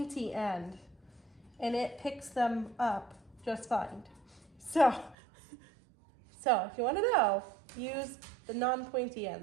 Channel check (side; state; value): left; drops out; at 5.2 s